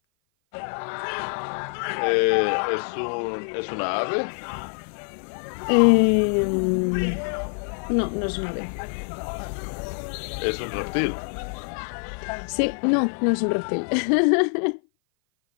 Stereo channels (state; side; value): silent; right; 55 dB below the other